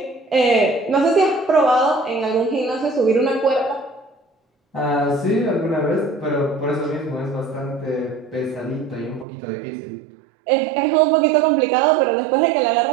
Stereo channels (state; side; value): drops out; left; at 9.2 s